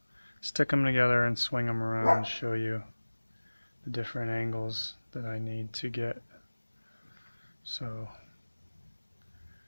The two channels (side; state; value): both; inverted; correlation -1.00